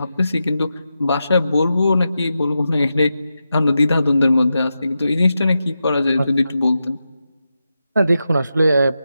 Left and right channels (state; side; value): inverted; both; correlation -0.89